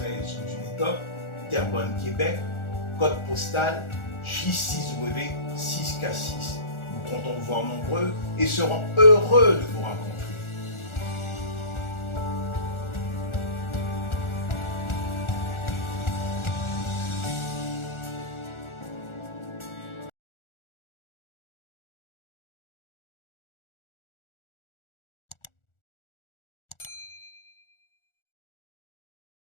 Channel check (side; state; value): right; late; 1.4 ms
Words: rue du Médoc, Terrebonne, Québec, code postal J6W 6K6. Nous comptons vous voir nombreux et serons heureux de vous rencontrer.